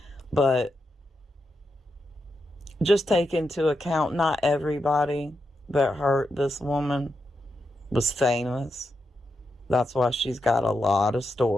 But just take into account, not everybody that hurt this woman was famous. That's why she's got a lot of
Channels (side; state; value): both; normal; correlation 0.85